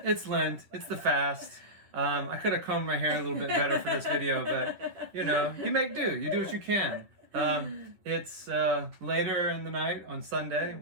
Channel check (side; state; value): left; late; 11 ms